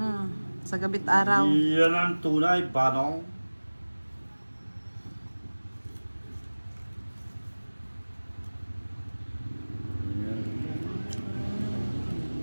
Sa gabit araw. Iyan ang tunay, Banong.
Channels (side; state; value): both; inverted; correlation -1.00